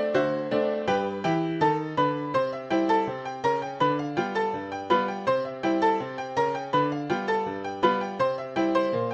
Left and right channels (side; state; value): both; identical; correlation 1.00